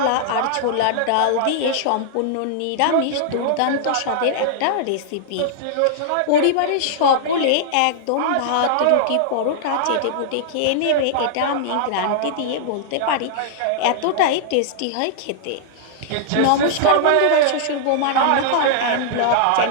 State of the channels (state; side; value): different; both; correlation -0.01